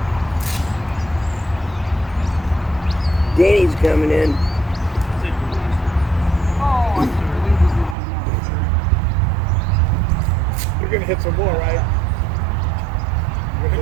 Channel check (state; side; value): drops out; left; at 8.0 s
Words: Danny's coming in. Oh, You're gonna hit some more, right? You're gonna